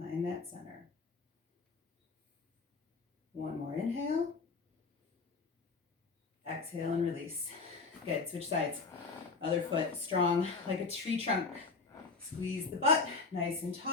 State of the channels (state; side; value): quieter; right; 4.1 dB